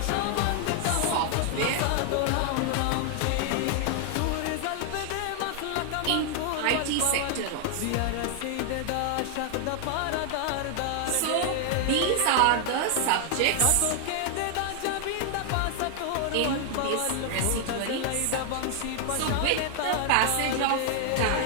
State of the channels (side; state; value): both; different; correlation 0.00